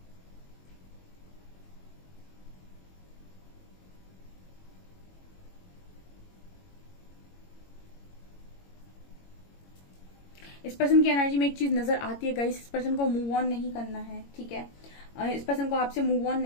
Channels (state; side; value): late; right; 21 ms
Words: इस पर्सन की एनर्जी में एक चीज नजर आती है गाइस, इस पर्सन को मूव ऑन नहीं करना है, ठीक है, इस पर्सन को आपसे मूव ऑन